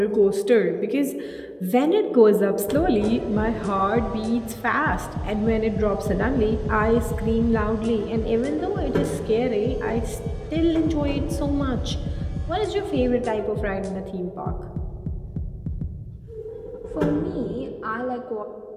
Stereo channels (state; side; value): identical; both; correlation 1.00